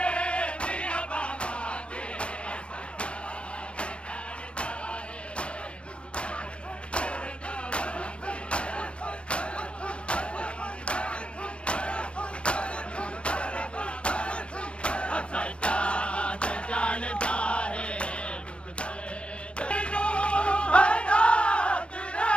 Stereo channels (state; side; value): late; right; 0.058 ms